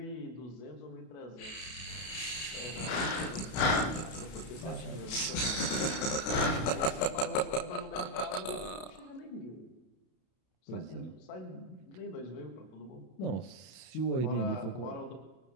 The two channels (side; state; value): right; late; 32 ms